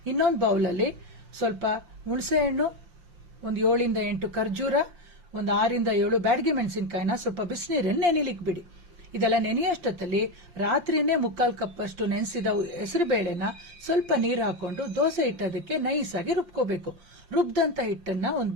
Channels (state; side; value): late; left; 5.7 ms